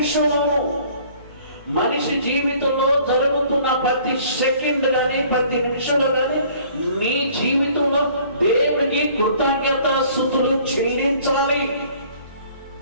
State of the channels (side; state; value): both; inverted; correlation -0.55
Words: మనిషి జీవితంలో జరుగుతున్న ప్రతి సెకండ్ కానీ, ప్రతి నిమిషంలో కానీ నీ జీవితంలో దేవుడికి కృతజ్ఞతాస్తుతులు చెల్లించాలి.